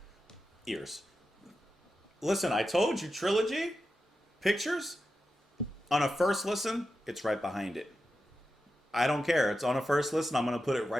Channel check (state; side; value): normal; both; correlation 0.90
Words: ears. Listen, I told you, Trilogy, Pictures, on a first listen, it's right behind it. I don't care. It's on a first listen, I'm going to put it